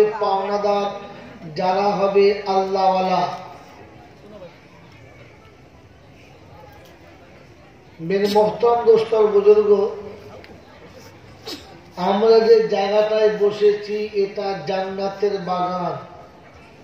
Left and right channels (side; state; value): both; identical; correlation 1.00